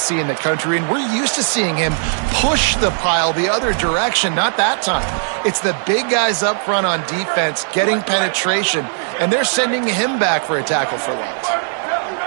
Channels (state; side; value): silent; left; 68 dB below the other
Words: in the country, and we're used to seeing him push the pile the other direction. Not that time. It's the big guys up front on defense getting penetration, and they're sending him back for a tackle for loss.